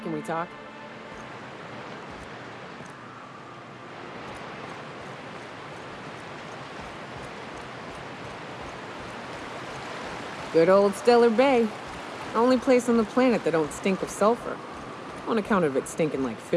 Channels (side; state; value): both; identical; correlation 1.00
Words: Can we talk? Good old Stellar Bay. Only place on the planet that don't stink of sulfur. On account of it stinking like